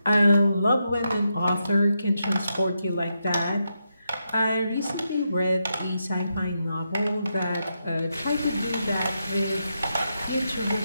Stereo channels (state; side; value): inverted; both; correlation -0.84